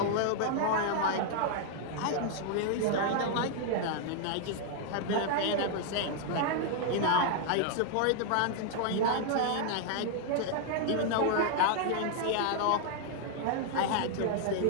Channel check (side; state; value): both; different; correlation 0.00